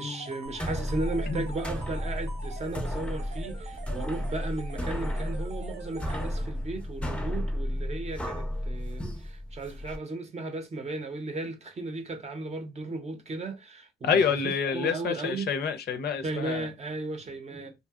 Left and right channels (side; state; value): both; normal; correlation 0.63